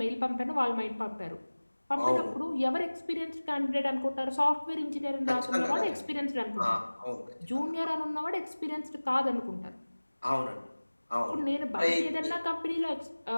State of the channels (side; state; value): both; inverted; correlation -1.00